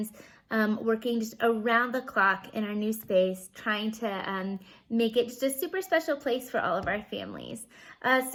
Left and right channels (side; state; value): both; identical; correlation 1.00